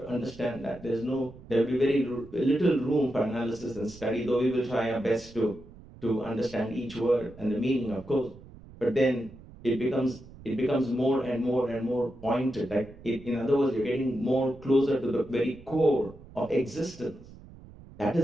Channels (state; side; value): noise; right; rumble, 19 dB below the sound